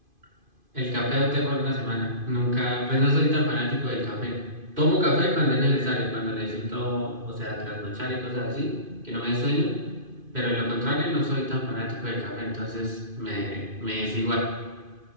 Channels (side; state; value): left; late; 2.5 ms